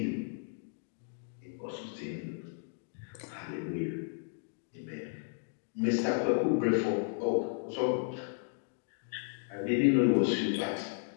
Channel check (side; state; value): right; silent; digital silence